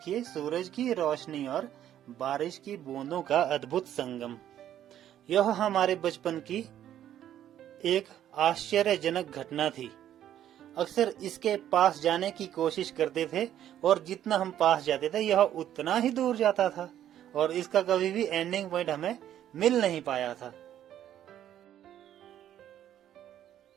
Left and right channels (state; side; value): quieter; left; 11.2 dB